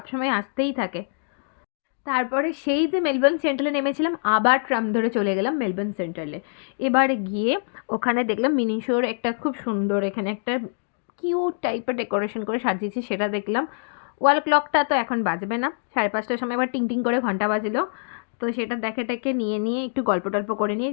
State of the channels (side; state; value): right; silent; digital silence